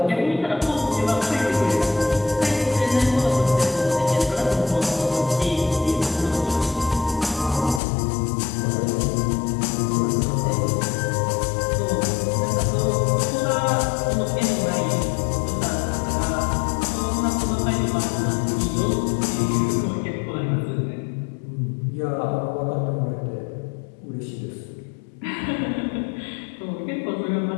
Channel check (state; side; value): drops out; right; at 7.8 s